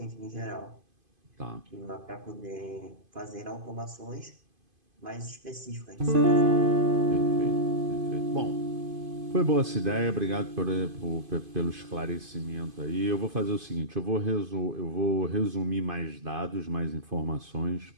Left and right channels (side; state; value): left; late; 2.5 ms